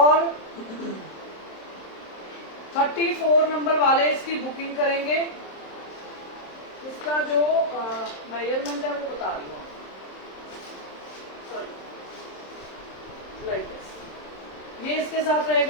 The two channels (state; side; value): late; right; 27 ms